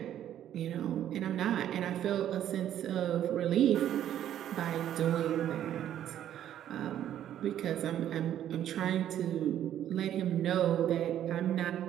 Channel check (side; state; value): left; quieter; 11.0 dB